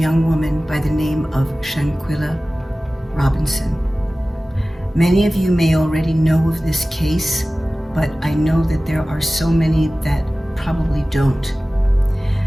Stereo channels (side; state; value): both; normal; correlation 0.97